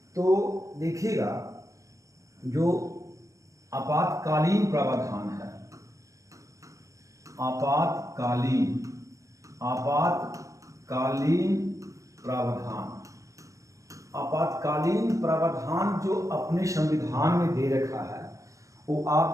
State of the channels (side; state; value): left; late; 0.16 ms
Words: तो देखिएगा, जो आपातकालीन प्रावधान है, आपातकालीन प्रावधान, आपातकालीन प्रावधान जो अपने संविधान में दे रखा है वो